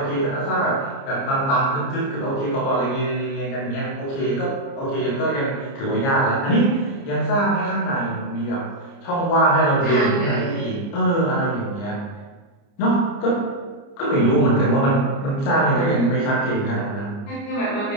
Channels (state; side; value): late; right; 29 ms